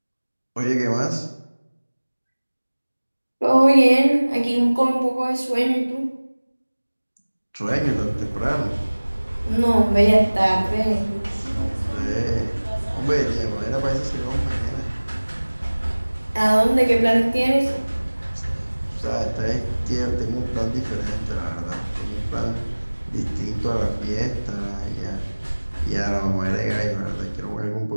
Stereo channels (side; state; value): both; inverted; correlation -1.00